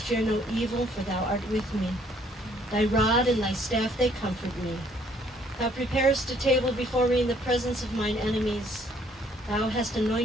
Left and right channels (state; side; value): normal; both; correlation 0.63